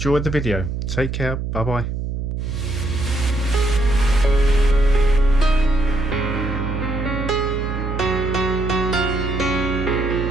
the video. Take care. Bye bye.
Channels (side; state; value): right; noise; hum, 3 dB below the sound